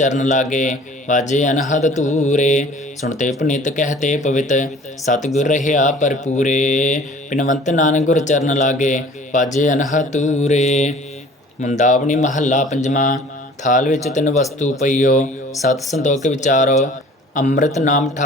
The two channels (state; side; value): normal; both; correlation 0.49